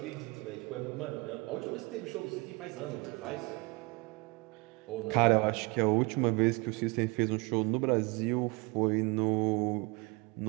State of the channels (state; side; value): quieter; left; 27.2 dB